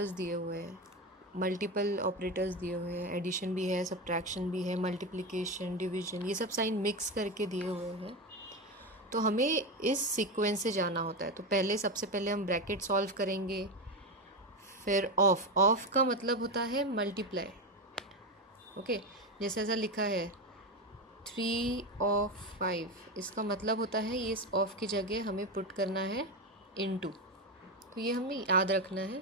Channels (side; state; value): both; normal; correlation 0.16